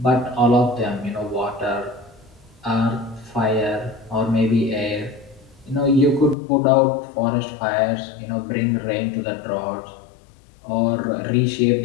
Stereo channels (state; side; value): drops out; right; at 6.4 s